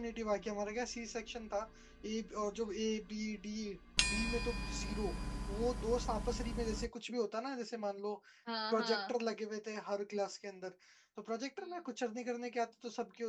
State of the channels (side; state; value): both; identical; correlation 1.00